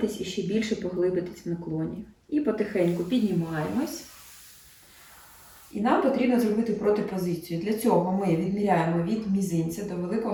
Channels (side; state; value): both; identical; correlation 1.00